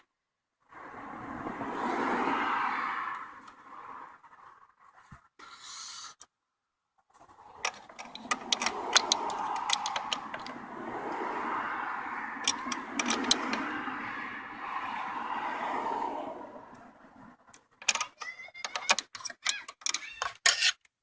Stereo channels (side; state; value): both; identical; correlation 1.00